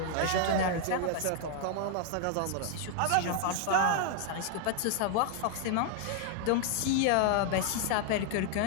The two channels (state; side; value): different; both; correlation 0.00